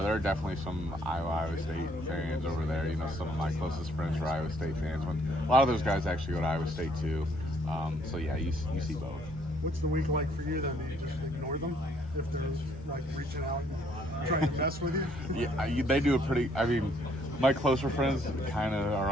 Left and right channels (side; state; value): both; normal; correlation 0.65